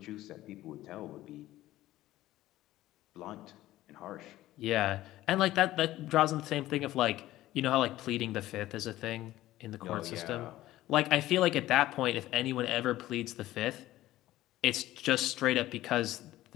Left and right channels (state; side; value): quieter; right; 15.5 dB